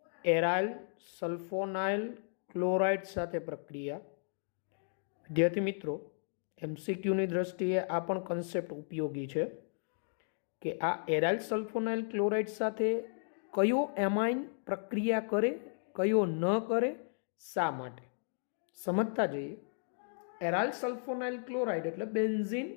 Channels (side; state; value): right; silent; digital silence